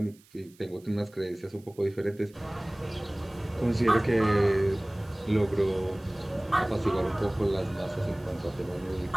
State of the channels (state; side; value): noise; right; hiss, 28 dB below the sound